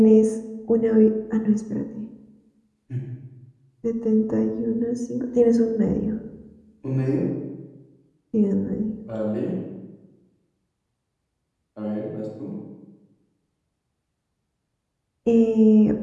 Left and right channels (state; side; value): identical; both; correlation 1.00